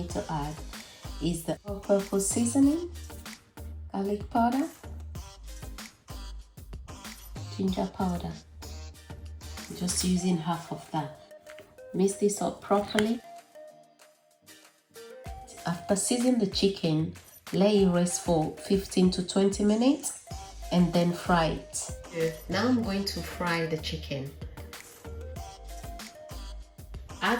to add is the all-purpose seasoning, garlic powder, ginger powder. Just using half of that. Mix this up properly. After seasoning the chicken, let it rest for 15 to 20 minutes and then fry it. Now I'm going to fry the chicken.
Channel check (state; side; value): identical; both; correlation 1.00